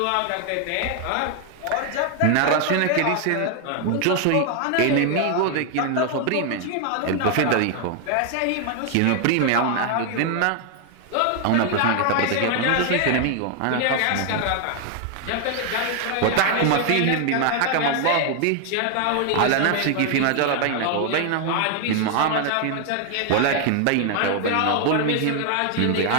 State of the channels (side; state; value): both; different; correlation 0.00